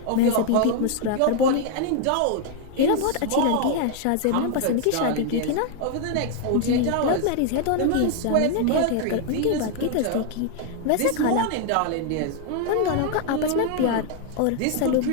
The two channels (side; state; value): both; different; correlation 0.00